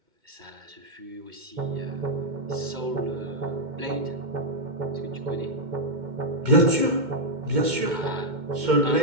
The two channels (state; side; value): late; left; 2.1 ms